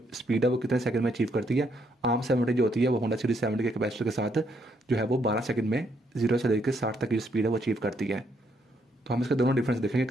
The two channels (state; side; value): normal; both; correlation 0.73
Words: स्पीड है वो कितने सेकंड में अचीव करती है। आम 70 जो होती है वो होंडा सिटी 70 के कैपेसिटर के साथ जो है वो 12 सेकंड में 0 से लेकर 60 तक की जो स्पीड है वो अचीव करती है। तो हम इसके दोनों डिफरेंस देखेंगे,